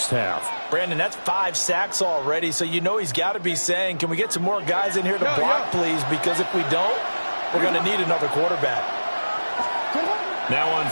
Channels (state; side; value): inverted; both; correlation -1.00